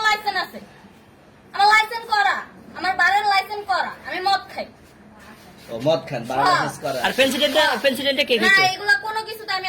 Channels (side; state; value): both; identical; correlation 1.00